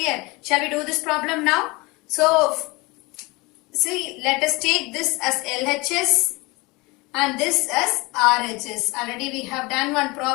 Shall we do this problem now? So, see, let us take this as LHS and this as RHS. Already we have done one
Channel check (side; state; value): right; quieter; 24.4 dB